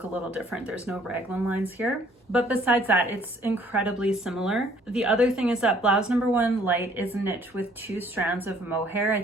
a little different. There's no raglan lines here. But besides that, it's incredibly similar. The other thing is that Blouse No. 1 Light is knit with 2 strands of mohair. I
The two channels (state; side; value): normal; both; correlation 0.60